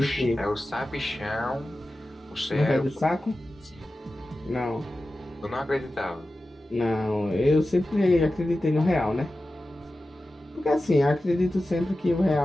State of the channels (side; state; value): both; normal; correlation 0.94